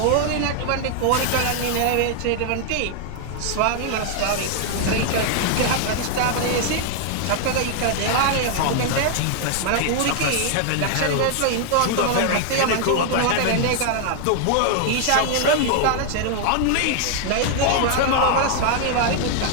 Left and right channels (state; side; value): different; both; correlation 0.00